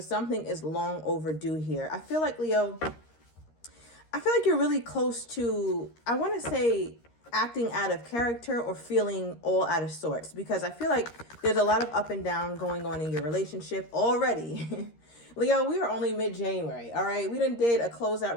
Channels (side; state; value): right; late; 13 ms